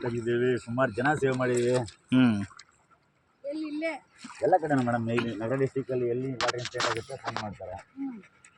ತೆಗೆದಿದ್ದೀವಿ, ಸುಮಾರು ಜನ ಸೇವೆ ಮಾಡಿದ್ದೀವಿ. ಎಲ್ಲ ಕಡೆ ಮೇಡಮ್. ಇಲ್ಲಿ ನಗರ ಡಿಸ್ಟಿಕಲ್ಲಿ ಎಲ್ಲಿ ವಾಟರ್ ಇನ್ಸಿಡೆಂಟ್ ಆಗುತ್ತೆ ಫೋನ್ ಮಾಡ್ತಾರೆ.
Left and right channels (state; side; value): identical; both; correlation 1.00